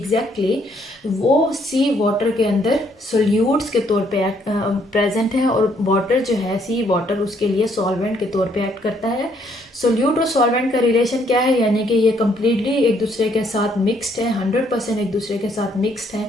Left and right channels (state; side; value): normal; both; correlation 0.68